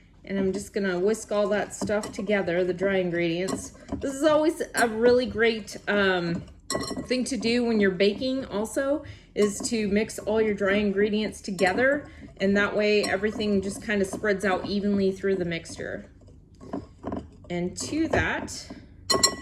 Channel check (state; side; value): identical; both; correlation 1.00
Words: and I'm just gonna whisk all that stuff together, the dry ingredients. This is always a really great thing to do when you're baking also, is to mix all your dry ingredients together, and that way everything just kind of spreads out evenly through the mixture. And to that,